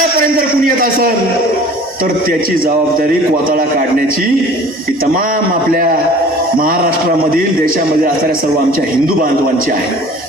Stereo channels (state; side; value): normal; both; correlation 0.46